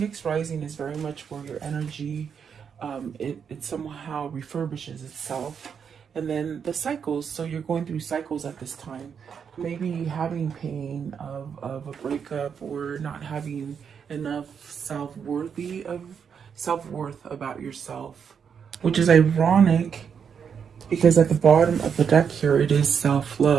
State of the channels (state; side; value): quieter; left; 7.0 dB